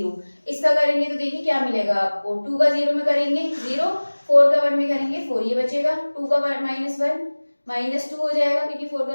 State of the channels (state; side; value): inverted; both; correlation -1.00